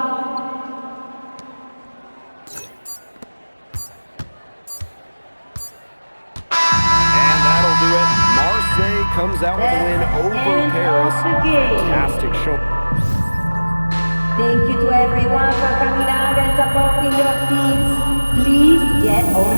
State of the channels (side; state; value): both; inverted; correlation -1.00